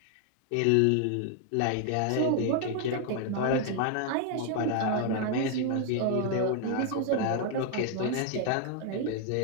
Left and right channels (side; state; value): both; different; correlation 0.00